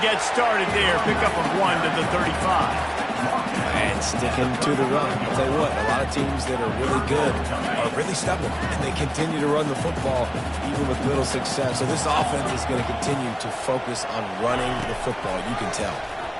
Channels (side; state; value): both; identical; correlation 1.00